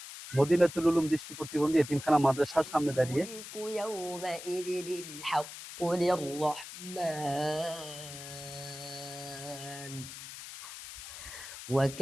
মদিনাতুল উলুম দৃষ্টি প্রতিবন্ধী এতিমখানা মাদ্রাসার সামনে দাঁড়িয়ে।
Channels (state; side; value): noise; left; hiss, 12 dB below the sound